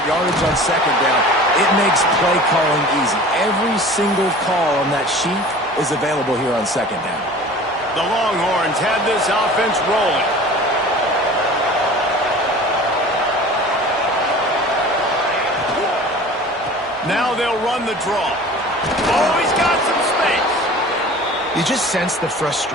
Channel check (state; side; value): normal; both; correlation 0.42